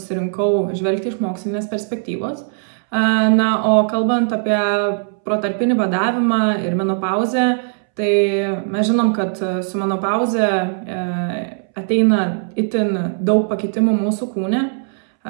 žvelgti iš mokslinės perspektyvos. O kalbant apie protarpinį badavimą ir menopauzę, tai mes žinom, kad su menopauze ateina itin daug pakitimų mūsų kūne.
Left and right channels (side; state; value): left; silent; 67 dB below the other